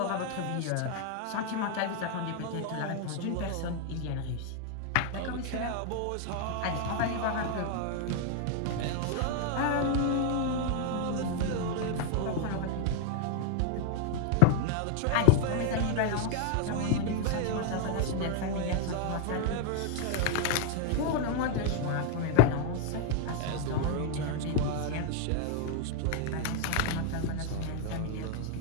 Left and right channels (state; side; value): different; both; correlation 0.00